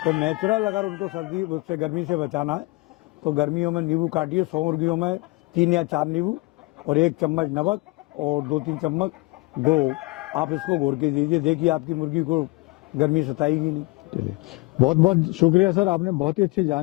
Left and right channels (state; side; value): quieter; right; 24.3 dB